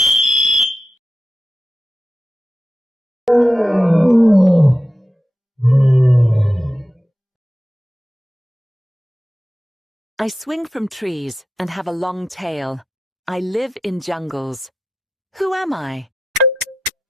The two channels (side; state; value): both; normal; correlation 0.90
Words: I swing from trees and have a long tail. I live in jungles. Who am I?